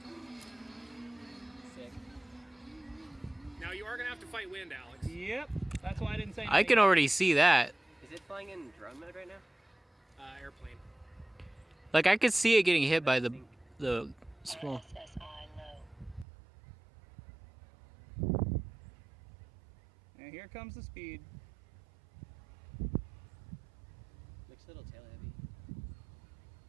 Sick. Now you are gonna have to fight wind, Alex. Yep. That's why I didn't say anything. I can already see that. Is it flying in drone mode right now? Airplane. Like I could see it getting hit by the small. And here comes the speed. Looks a little tail heavy.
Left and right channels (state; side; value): drops out; left; at 16.2 s